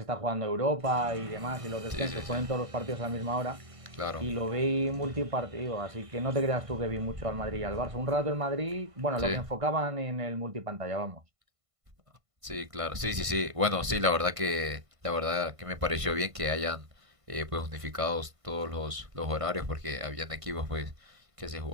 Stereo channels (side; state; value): left; late; 1.5 ms